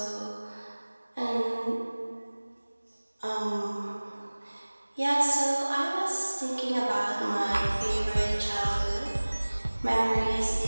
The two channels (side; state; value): both; inverted; correlation -1.00